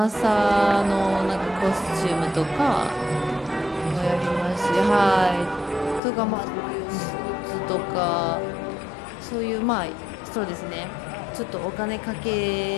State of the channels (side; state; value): right; drops out; at 6.0 s